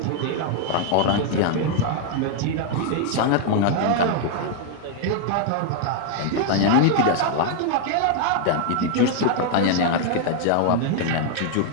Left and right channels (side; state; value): both; different; correlation 0.00